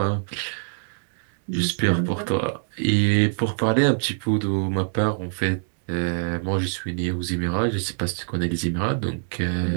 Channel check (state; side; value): silent; left; digital silence